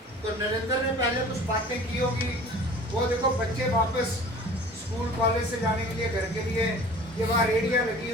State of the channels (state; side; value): normal; both; correlation 0.45